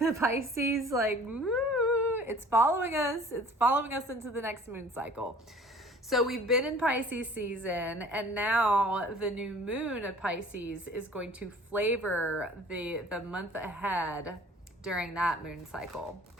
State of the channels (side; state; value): both; normal; correlation 0.49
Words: Pisces, it's following us. It's following us into the next moon cycle. So we've been in Pisces season, and now the new moon of Pisces is going to flavor the month ahead during that moon cycle.